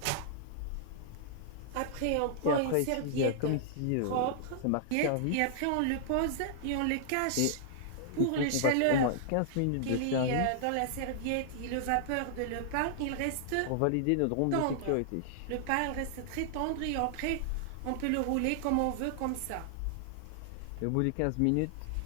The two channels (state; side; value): different; both; correlation -0.01